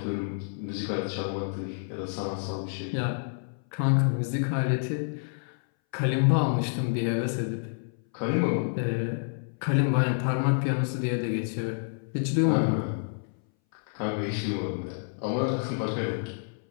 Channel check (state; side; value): silent; right; 59 dB below the other